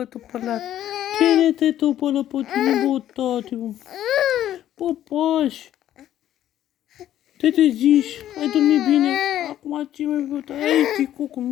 tu pălat? Cine te pălă pe tine, bă, tati, bă? Bă, pași. Te treziși, ai dormit bine. Acum ce mai bă, tati? Ai, ticucu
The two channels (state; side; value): quieter; right; 12.0 dB